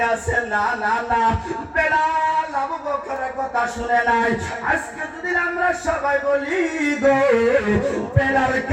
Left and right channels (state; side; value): identical; both; correlation 1.00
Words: আছে, না না না, বেলাল আবু বকরের কথা শুনে নাই। আজকে যদি আমরা সবাই বলি গো বেলাল